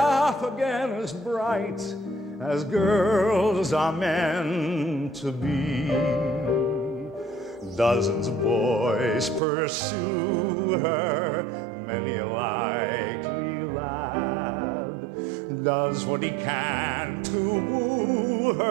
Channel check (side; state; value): left; drops out; at 9.4 s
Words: again as bright as girls are meant to be. Dozens of boys pursue her, many a likely lad does what he can to woo